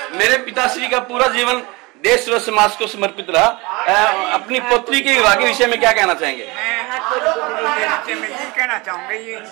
मेरे पिताश्री का पूरा जीवन देश व समाज को समर्पित रहा। अपनी पुत्री के विवाह के विषय में क्या कहना चाहेंगे? मैं ये कहना चाहूंगा, ये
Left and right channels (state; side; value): quieter; left; 24.8 dB